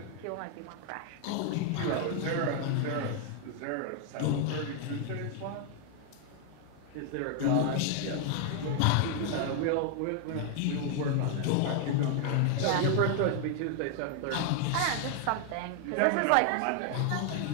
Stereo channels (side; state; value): both; different; correlation 0.00